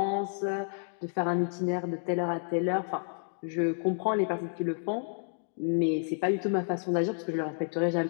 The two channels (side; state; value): right; silent; digital silence